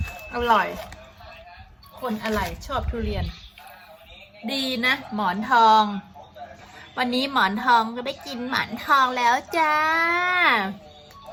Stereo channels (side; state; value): both; identical; correlation 1.00